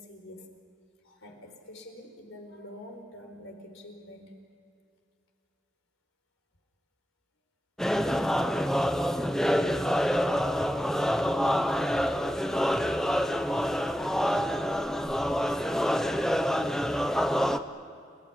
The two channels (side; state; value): both; normal; correlation 0.92